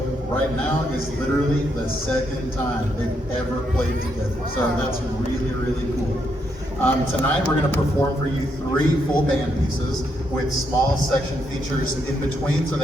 right now is literally the second time they've ever played together. So that's really, really cool. Tonight we're going to perform for you 3 full band pieces with small section features in between so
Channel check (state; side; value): normal; both; correlation 0.78